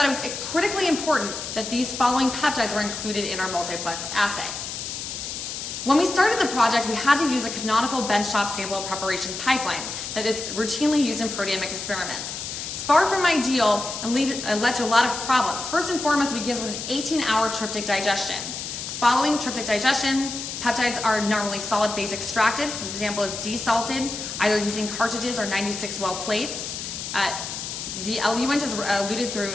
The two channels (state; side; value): noise; left; hiss, 6 dB below the sound